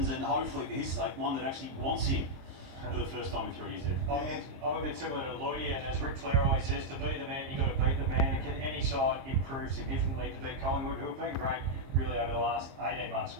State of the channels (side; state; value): left; late; 22 ms